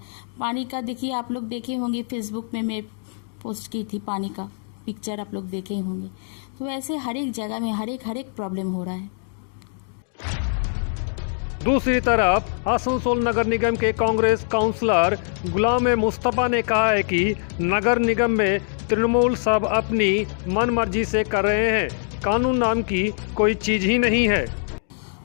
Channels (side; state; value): right; silent; digital silence